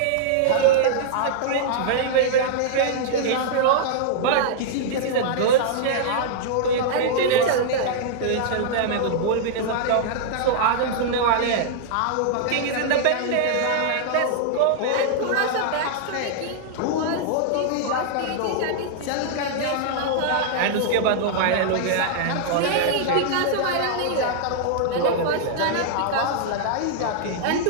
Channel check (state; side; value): different; both; correlation -0.01